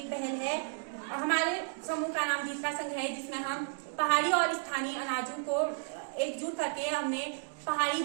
पहल है। हमारे समूह का नाम जीत का संघ है, जिसमें हम पहाड़ी और स्थानीय अनाजों को एकजुट करके हमने पहाड़ी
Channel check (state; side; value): silent; left; digital silence